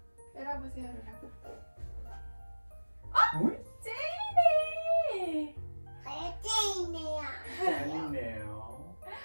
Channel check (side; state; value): both; inverted; correlation -1.00